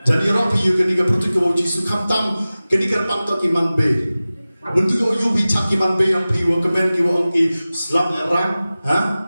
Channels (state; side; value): inverted; both; correlation -0.97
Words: Jadi orang piyu kenika pertu kiwong jisu kamtam kenika pangto kiman be. Bentuk kiwong yu bicak kiman be yang piyu kemen kiwong ki selam erang, ha?